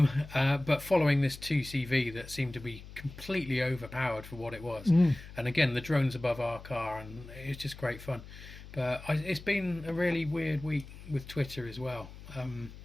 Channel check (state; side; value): noise; left; hum, 15 dB below the sound